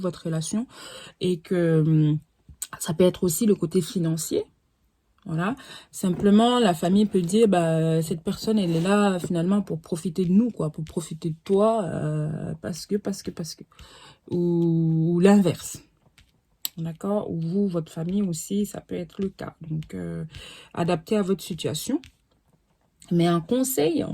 relation et que ça peut être aussi le côté financier. Voilà, simplement la famille peut dire bah cette personne elle est là finalement pour profiter de nous quoi, pour profiter de toi parce que ou l'inverse. D'accord, ou vous votre famille aussi ça peut être le cas. Donc adapté à votre situation. Mais un conseil, on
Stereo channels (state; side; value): identical; both; correlation 1.00